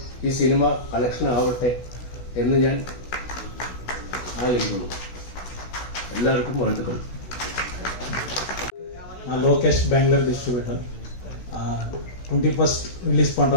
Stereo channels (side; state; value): right; late; 16 ms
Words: ഈ സിനിമ കളക്ഷൻ ആവട്ടെ എന്ന് ഞാൻ ആഗ്രഹിക്കുന്നു. எல்லாருக்கும் வாழ்த்துக்கள். Lokesh Bangalore distributor 21st release பண்ணுற